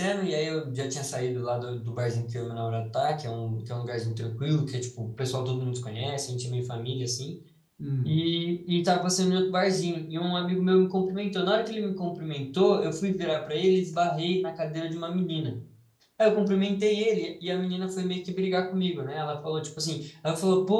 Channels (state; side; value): identical; both; correlation 1.00